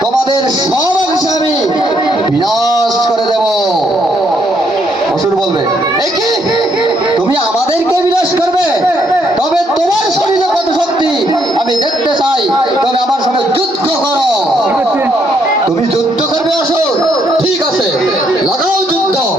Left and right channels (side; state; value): both; normal; correlation 0.73